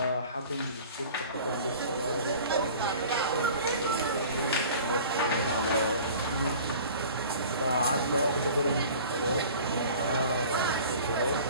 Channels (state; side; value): inverted; both; correlation -0.44